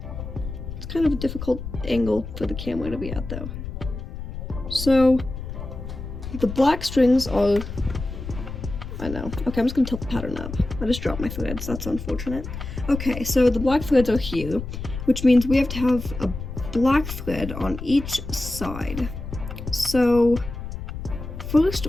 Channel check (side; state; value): left; noise; rumble, 8 dB below the sound